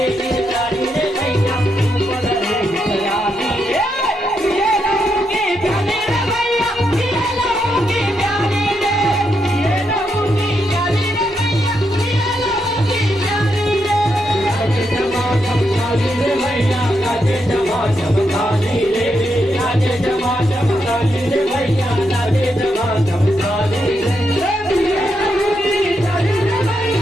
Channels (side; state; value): both; normal; correlation 0.81